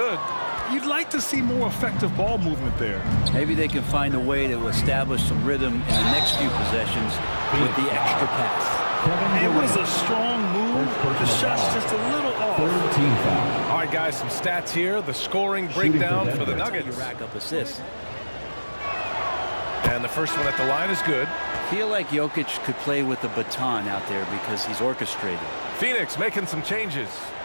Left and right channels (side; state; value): both; inverted; correlation -1.00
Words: You'd like to see more effective ball movement there. Maybe they can find a way to establish some rhythm in the next few possessions with the extra pass. It was a strong move. The shot's just a little off. All right, guys, some stats here. The scoring breakdown for the Nuggets. You rack up assists. And the first one at the line is good. I feel like Jokic could play with the baton out there because he's orchestrated. Phoenix making some changes.